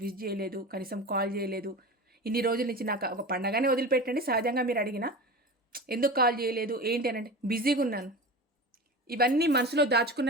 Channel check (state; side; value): normal; both; correlation 0.30